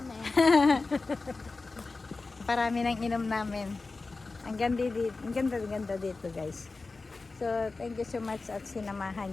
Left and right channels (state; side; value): quieter; right; 3.7 dB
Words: Parami nang inom namin. Ang ganda dito guys. So, thank you so much at